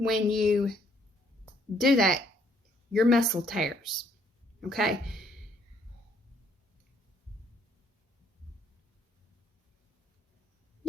you do that? Your muscle tears, okay?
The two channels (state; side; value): normal; both; correlation 0.66